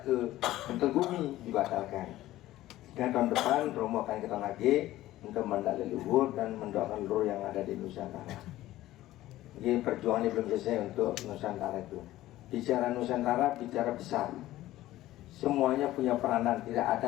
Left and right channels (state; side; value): quieter; right; 15.4 dB